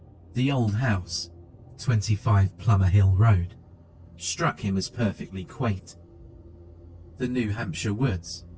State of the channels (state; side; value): identical; both; correlation 1.00